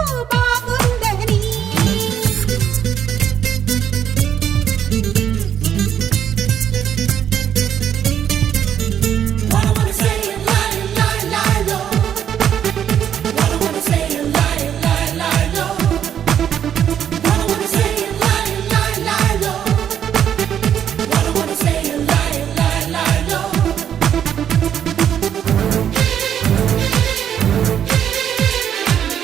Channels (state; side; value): quieter; left; 9.3 dB